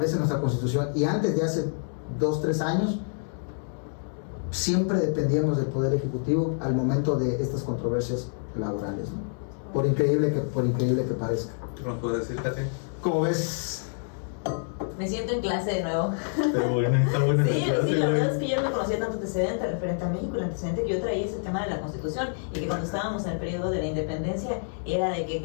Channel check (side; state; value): right; silent; digital silence